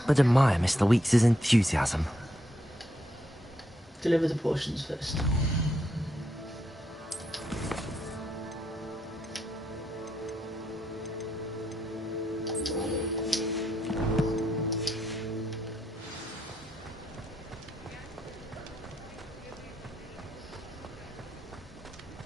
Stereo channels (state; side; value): normal; both; correlation 0.78